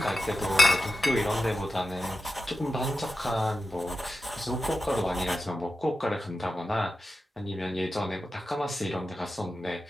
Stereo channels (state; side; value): normal; both; correlation 0.91